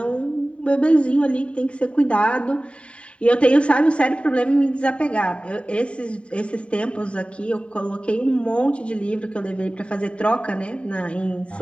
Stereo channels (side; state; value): right; late; 0.060 ms